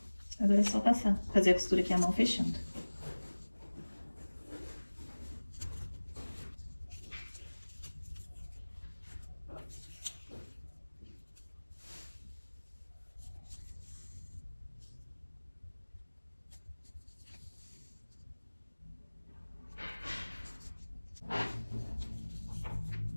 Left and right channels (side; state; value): both; inverted; correlation -1.00